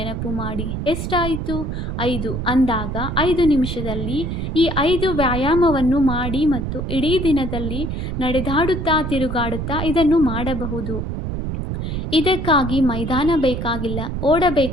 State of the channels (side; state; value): right; noise; rumble, 4 dB below the sound